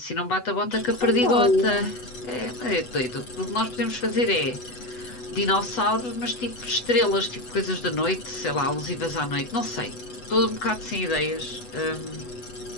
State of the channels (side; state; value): right; late; 8.1 ms